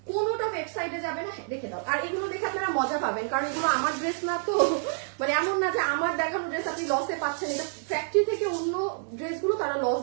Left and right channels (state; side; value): silent; left; digital silence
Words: কোনোটা ওয়েবসাইটে যাবে না। রেখে দাও। আর এগুলো দেখে আপনারা মজা পাবেন, কারণ এগুলো আমার ড্রেস না তো, মানে এমন না যে আমার দেখানো ড্রেস আপনি লসে পাচ্ছেন। এটা ফ্যাক্টরি থেকে অন্য ড্রেসগুলো তারা লস